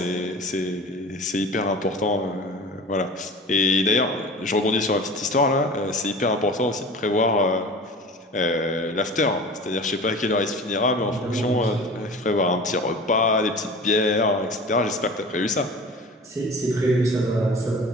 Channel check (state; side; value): normal; both; correlation 0.38